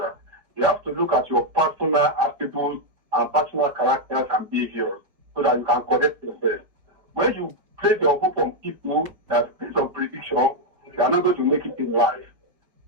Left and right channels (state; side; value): late; left; 4.6 ms